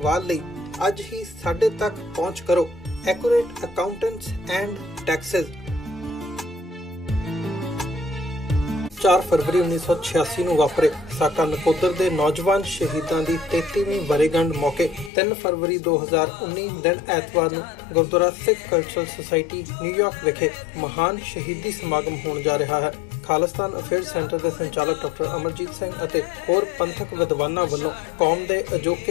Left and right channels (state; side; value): drops out; right; at 15.1 s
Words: ਲਈ ਅੱਜ ਹੀ ਸਾਡੇ ਤੱਕ ਪਹੁੰਚ ਕਰੋ। Accurate accountants and Texas. 4 ਫਰਵਰੀ 1986 ਨੂੰ ਵਾਪਰੇ ਸਾਕਾ ਨਕੋਦਰ ਦੇ ਨੌਜਵਾਨ ਸ਼ਹੀਦਾਂ ਦੀ 33ਵੀਂ ਵਰ੍ਹੇਗੰਢ ਮੌਕੇ 3 ਫਰਵਰੀ 2019 ਦਿਨ ਐਤਵਾਰ ਨੂੰ Gurdwara Sikh cultural society New York ਵਿਖੇ ਮਹਾਨ ਸ਼ਹੀਦੀ ਸਮਾਗਮ ਹੋਣ ਜਾ ਰਿਹਾ ਹੈ। ਖਾਲਿਸਤਾਨ ਅਫੇਅਰਸ ਸੈਂਟਰ ਦੇ ਸੰਚਾਲਕ ਡਾਕਟਰ ਅਮਰਜੀਤ ਸਿੰਘ ਅਤੇ ਹੋਰ ਪੰਥਕ ਵਿਦਵਾਨਾਂ ਵੱਲੋਂ ਕੌਮ ਦੇ